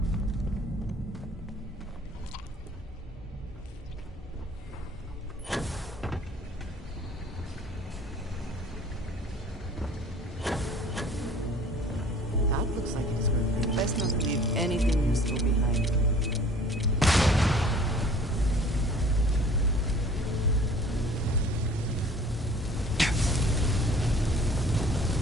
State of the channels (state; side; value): normal; both; correlation 0.50